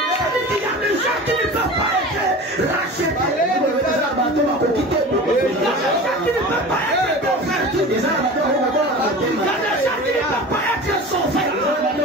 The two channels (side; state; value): both; normal; correlation 0.35